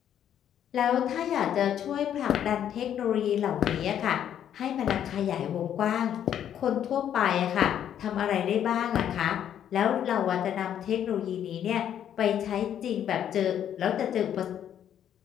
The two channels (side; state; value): right; quieter; 9.9 dB